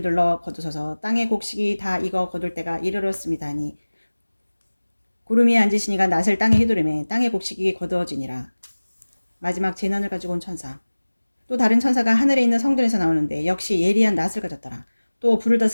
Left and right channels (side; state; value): both; inverted; correlation -1.00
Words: 거두소서 땅의 곡식이 다 익어 거둘 때가 이르렀습니다 하니 구름 위에 앉으신 이가 낫을 땅에 휘두르매 땅의 곡식이 거두어지니라. 마지막 재난을 가지고 온 천사. 또 다른 천사가 하늘에 있는 성전에서 나오는데 역시 예리한 낫을 가졌더라. 또 불을